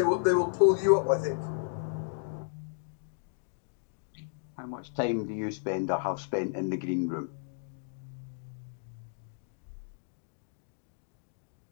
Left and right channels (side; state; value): right; silent; digital silence